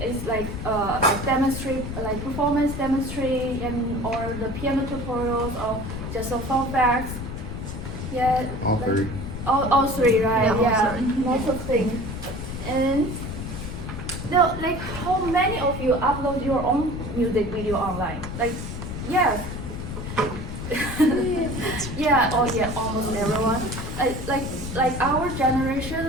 It's like demonstrate, like performance demonstrate, and or the piano tutorials, or just a fun facts. Yeah. All like, three. All three, right? Yeah, all three. Lots of things. And now, like, how many of you upload your own music video online? Like, yes. Yeah. Oh, yeah. Almost everyone. Like our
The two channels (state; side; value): noise; left; rumble, 7 dB below the sound